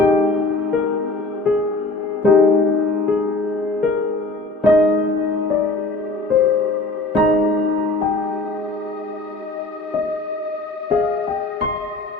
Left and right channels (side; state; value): right; quieter; 3.1 dB